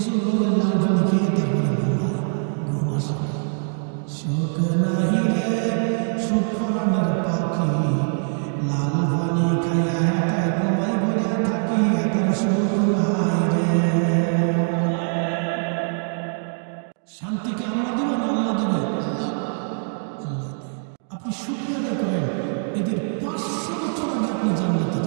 রঙের লাল পানি খেয়ে তারপরে ঘুমায়, ঘুম আসে না। শোক নাহি রে সুখ পরাণের পাখি, লাল পানি খাইয়া হেতায় ঘুমাই পড়িয়া থাকি, হেতার সুখ নাই রে। শান্তিকে আমরা দেব না আল্লাহ দেবে? আল্লাহ, আল্লাহ দেয়। আপনি শুকরিয়া আদায় করেন, এদের 500 বছর আগে আপনি জান্নাতে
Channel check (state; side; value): silent; left; 58 dB below the other